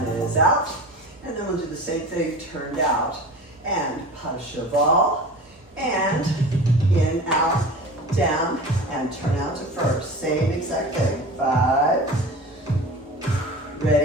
is out. And then we'll do the same thing, turned out, and pas de cheval, and in, out, down, and turn out to first. Same exact thing. 5,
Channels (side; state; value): both; normal; correlation 0.35